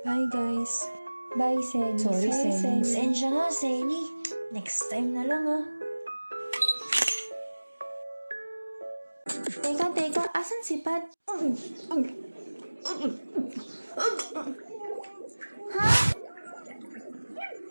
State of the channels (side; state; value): both; inverted; correlation -1.00